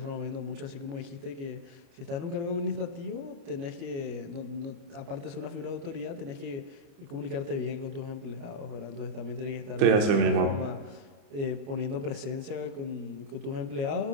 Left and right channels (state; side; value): late; left; 29 ms